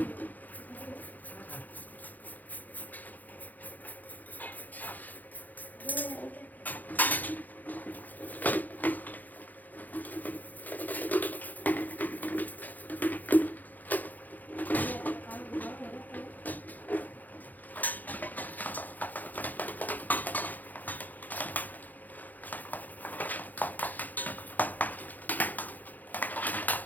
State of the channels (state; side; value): late; right; 0.083 ms